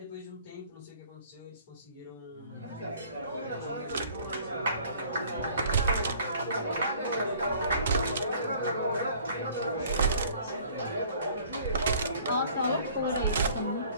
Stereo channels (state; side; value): inverted; both; correlation -0.54